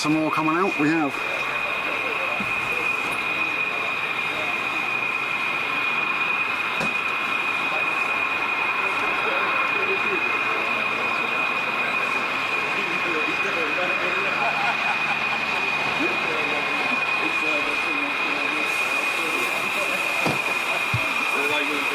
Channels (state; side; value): identical; both; correlation 1.00